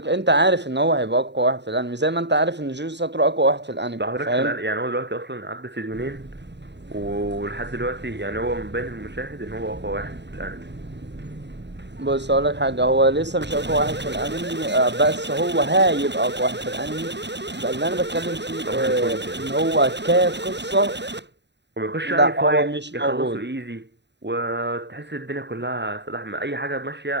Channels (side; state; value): left; late; 0.51 ms